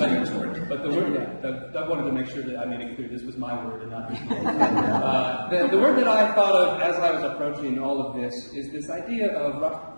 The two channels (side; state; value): both; inverted; correlation -1.00